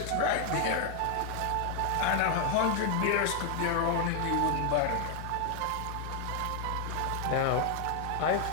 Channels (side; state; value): both; different; correlation 0.00